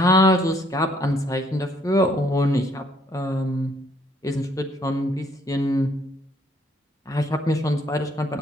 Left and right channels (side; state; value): both; normal; correlation 0.65